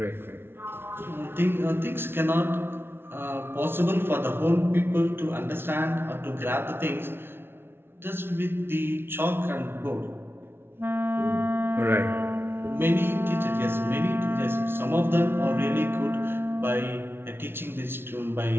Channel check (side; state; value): left; late; 0.11 ms